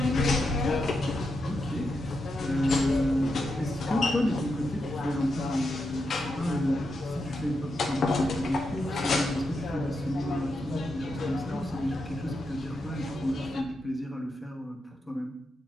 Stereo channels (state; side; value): normal; both; correlation 0.85